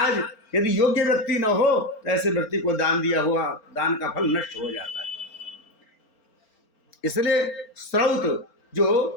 यदि योग्य व्यक्ति न हो तो ऐसे व्यक्ति को दान दिया हुआ दान का फल नष्ट हो जाता है। इसलिए श्रौत जो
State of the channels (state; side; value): late; right; 4.4 ms